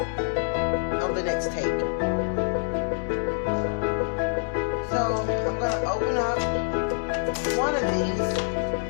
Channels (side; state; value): right; silent; digital silence